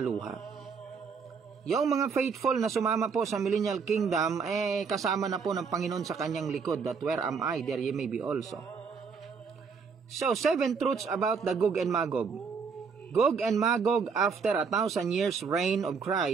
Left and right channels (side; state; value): left; quieter; 5.6 dB